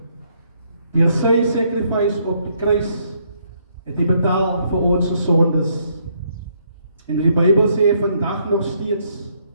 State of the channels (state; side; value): inverted; both; correlation -0.71